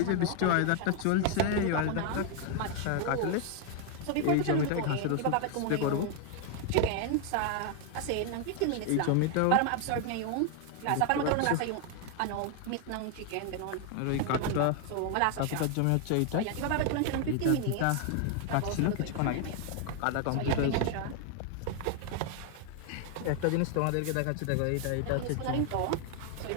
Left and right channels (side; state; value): both; different; correlation 0.00